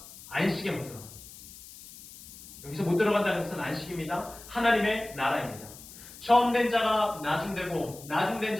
안식에 못 들어갑니다. 여기서 못 들어간다는 것은 안식입니다. 하나님의 나라입니다. 처음 된 자가 나중되고 나중된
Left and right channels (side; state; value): left; noise; hiss, 17 dB below the sound